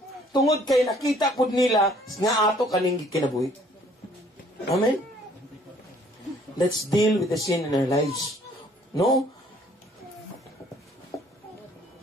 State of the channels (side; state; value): both; normal; correlation 0.60